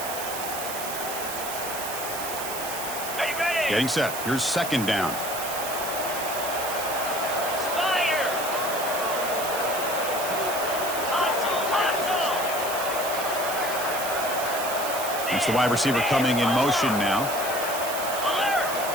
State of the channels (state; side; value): noise; right; hiss, 7 dB below the sound